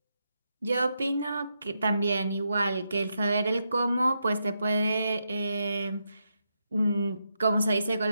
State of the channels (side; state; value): both; inverted; correlation -0.83